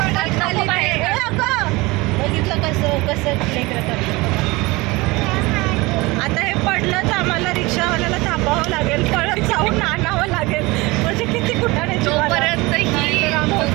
आता हे पडलं तर आम्हाला रिक्षावाल्याला थांबावं लागेल, परत जाऊन आणावं लागेल. म्हणजे किती कुठाने तोपर्यंत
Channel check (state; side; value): quieter; left; 22.9 dB